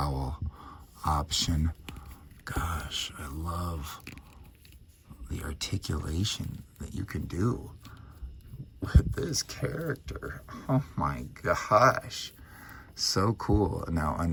option. Gosh, I love the articulation that you can do with this character. Oh my gosh, so cool. Now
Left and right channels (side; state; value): both; identical; correlation 1.00